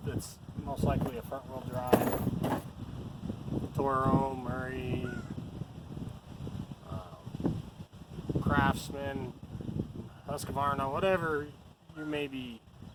most likely a front wheel drive, Toro, Murray, Craftsman, Husqvarna, whatever you may be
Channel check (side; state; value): both; identical; correlation 1.00